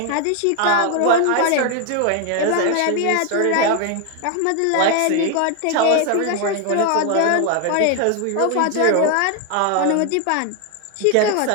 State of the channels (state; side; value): different; both; correlation 0.01